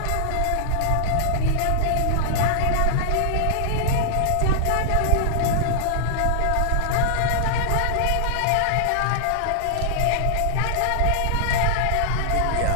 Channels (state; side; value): different; both; correlation -0.01